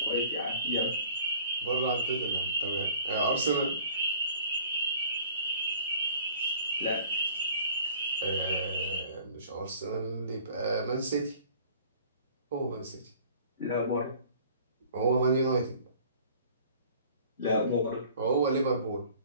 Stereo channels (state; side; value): inverted; both; correlation -0.50